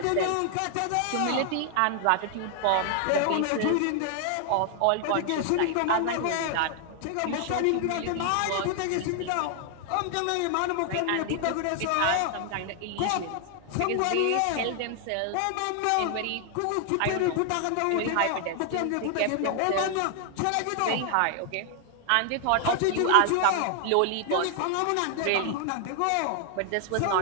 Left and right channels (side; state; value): both; different; correlation 0.00